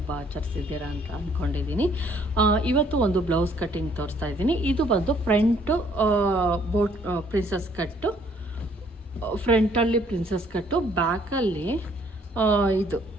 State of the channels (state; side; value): normal; both; correlation 0.63